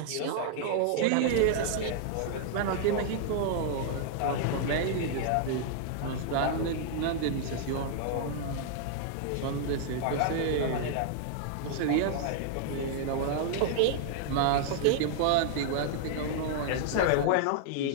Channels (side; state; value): both; different; correlation -0.01